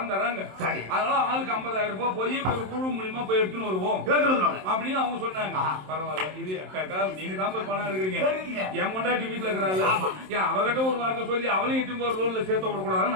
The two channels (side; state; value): left; late; 27 ms